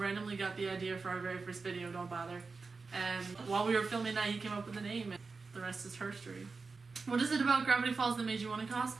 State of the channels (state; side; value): quieter; left; 4.3 dB